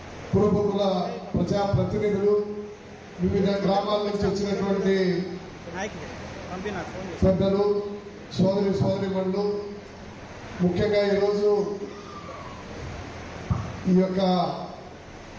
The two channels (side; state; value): both; identical; correlation 1.00